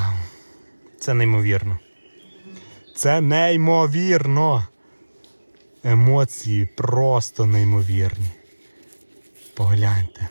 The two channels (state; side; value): inverted; both; correlation -1.00